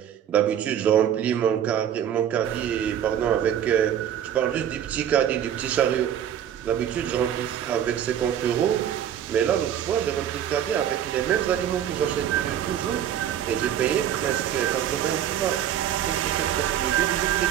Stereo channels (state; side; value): quieter; left; 10.0 dB